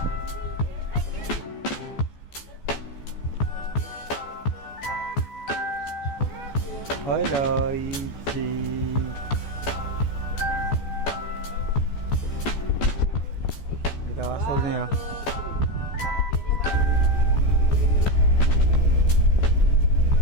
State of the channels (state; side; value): late; right; 14 ms